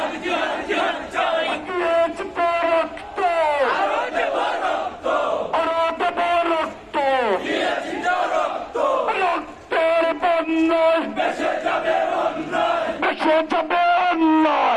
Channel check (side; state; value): both; identical; correlation 1.00